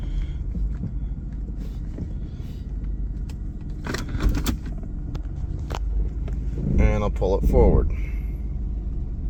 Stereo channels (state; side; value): identical; both; correlation 1.00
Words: And I'll pull it forward.